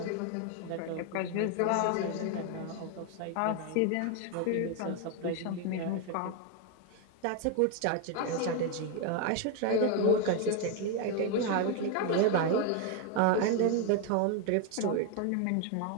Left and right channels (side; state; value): both; different; correlation 0.01